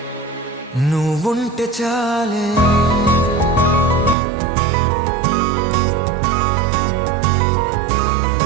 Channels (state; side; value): drops out; left; at 4.2 s